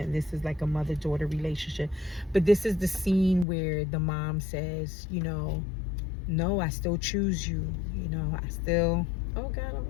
this is like a mother-daughter relationship, but this is the scene where the mom says, no, I still choose you, I still, oh God, I'm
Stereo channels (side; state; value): right; drops out; at 3.5 s